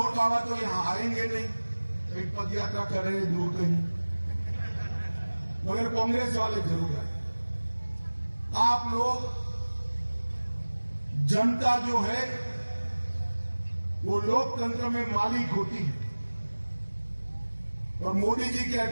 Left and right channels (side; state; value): both; inverted; correlation -1.00